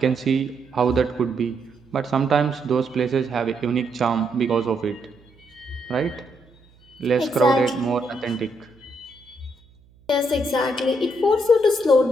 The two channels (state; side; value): noise; right; hum, 29 dB below the sound